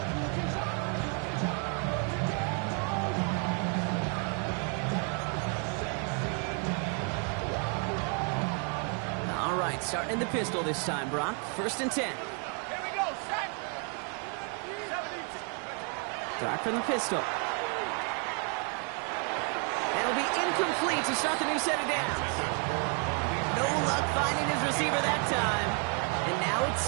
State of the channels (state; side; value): quieter; left; 39.8 dB